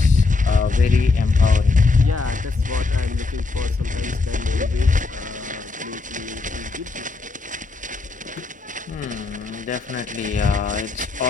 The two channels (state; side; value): quieter; right; 3.8 dB